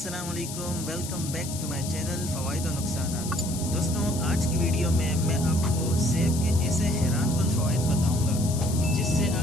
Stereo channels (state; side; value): noise; left; hiss, 9 dB below the sound